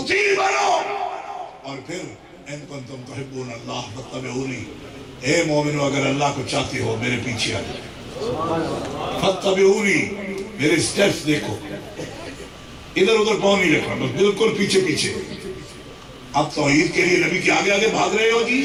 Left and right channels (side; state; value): both; identical; correlation 1.00